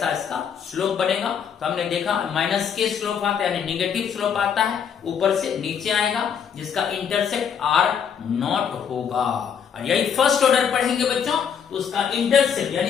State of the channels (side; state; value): right; quieter; 7.6 dB